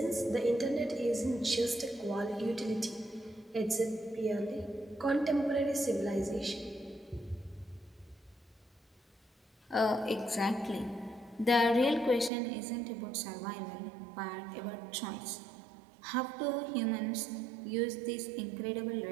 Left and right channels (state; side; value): drops out; left; at 12.3 s